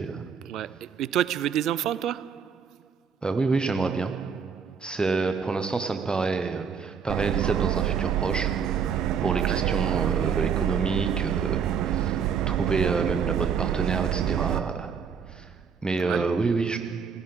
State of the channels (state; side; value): quieter; left; 6.5 dB